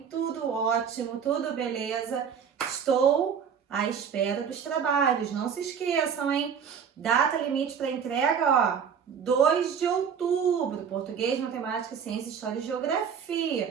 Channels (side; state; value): left; quieter; 7.3 dB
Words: Tudo ótimo? Tudo beleza? Estou à espera dos trabalhos. Não se esqueçam, hein? Data limite para entrega, ó, 2 de outubro. Português, matemática, ciência, história e